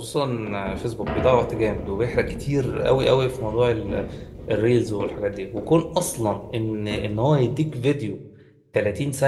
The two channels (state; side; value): identical; both; correlation 1.00